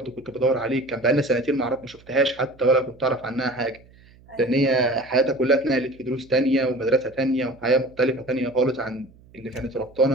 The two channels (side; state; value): right; noise; hum, 26 dB below the sound